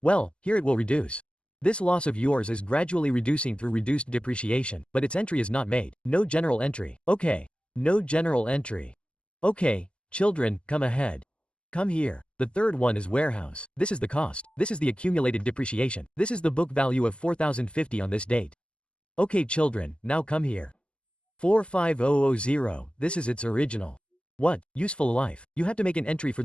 Well, here it will reduce. This loss of yours is gradually reducing through reduced depreciation, but its entry is not made. No general entry. Okay. No general entry. Okay, children, come ahead. Come here. The third one is warehouse. This is the cost. This is the accumulated depreciation. This is the book value of 4,050 on this date. Okay children, now come here. 45000, this is its original. What? Useful life. You have to make an entry for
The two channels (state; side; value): late; right; 0.057 ms